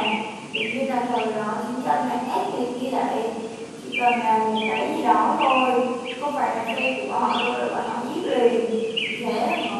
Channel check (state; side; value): identical; both; correlation 1.00